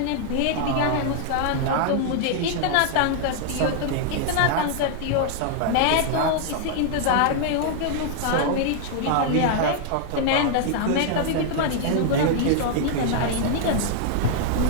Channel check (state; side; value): different; both; correlation 0.00